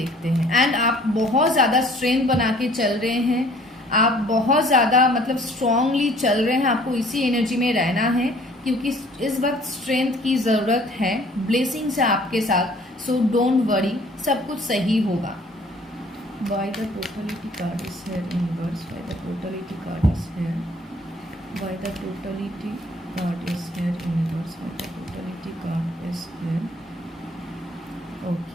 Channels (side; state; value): both; normal; correlation 0.55